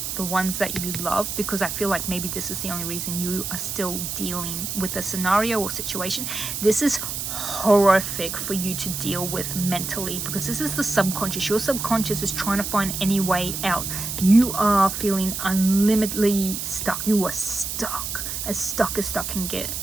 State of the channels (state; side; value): noise; right; hiss, 4 dB below the sound